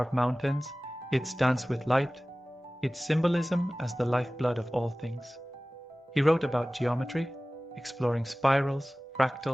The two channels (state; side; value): normal; both; correlation 0.98